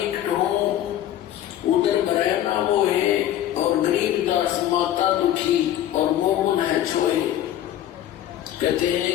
हूँ उधर भरे ना वो है, और गरीबदास माता दुखी और मोमन है छोए। कहते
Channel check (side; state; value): right; quieter; 11.9 dB